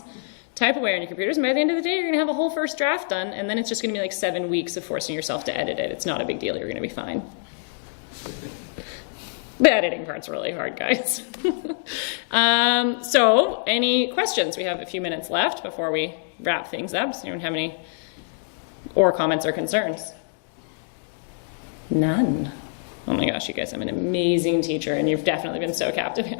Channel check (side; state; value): right; silent; digital silence